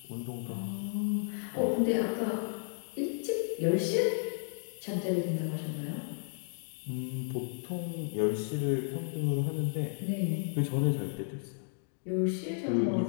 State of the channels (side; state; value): right; silent; digital silence